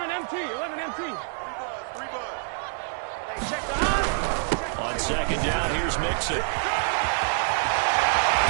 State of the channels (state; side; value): silent; left; digital silence